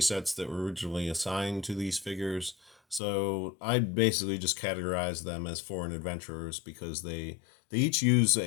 sets that were originally assigned to these figures. So I basically just categorize them as foreign adventurers because they each use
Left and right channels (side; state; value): right; drops out; at 3.0 s